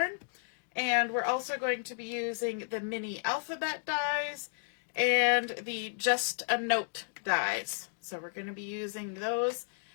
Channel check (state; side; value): silent; right; digital silence